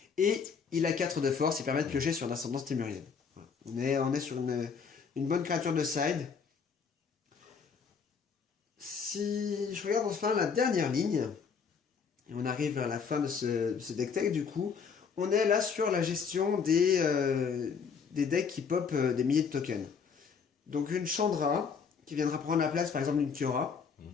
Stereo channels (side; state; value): right; quieter; 6.1 dB